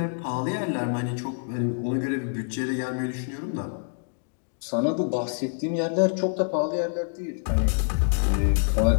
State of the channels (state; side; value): silent; right; digital silence